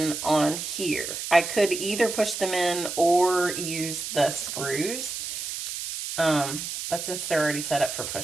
on here. I could either push them in or use the screws. But since they're already set up for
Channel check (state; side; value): noise; right; hiss, 6 dB below the sound